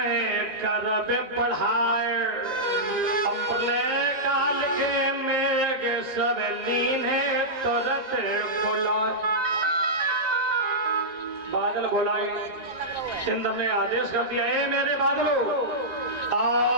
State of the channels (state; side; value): late; left; 1.9 ms